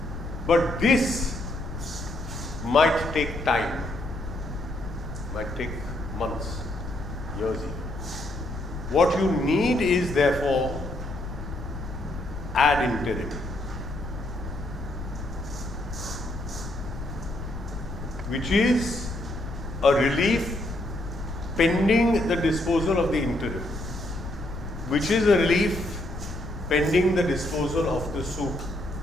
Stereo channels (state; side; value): noise; left; rumble, 9 dB below the sound